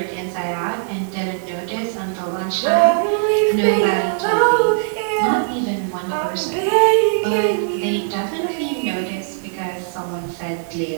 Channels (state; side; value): silent; left; 58 dB below the other